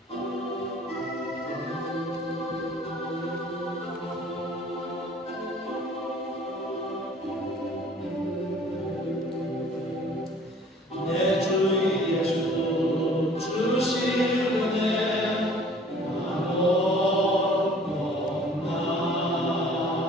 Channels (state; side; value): normal; both; correlation 0.52